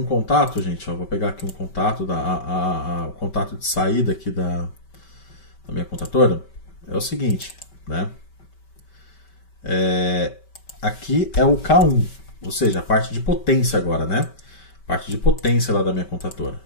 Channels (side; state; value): right; late; 5.2 ms